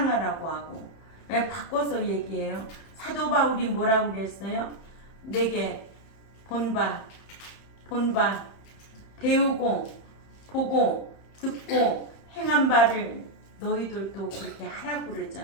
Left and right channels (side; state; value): right; late; 31 ms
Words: 하고. 바꿔서 얘기해요. 사도 바울이 뭐라고 그랬어요? 내게 본바 본 바, 배우고 보고 듣고 행한 바를 너희들도 그렇게 하라고